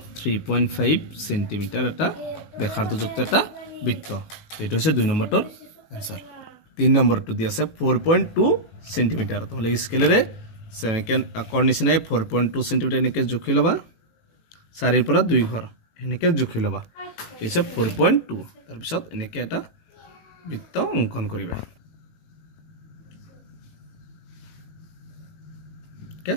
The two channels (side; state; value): right; late; 18 ms